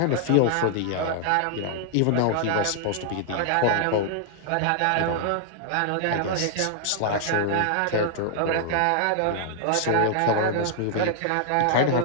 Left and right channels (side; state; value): both; different; correlation 0.00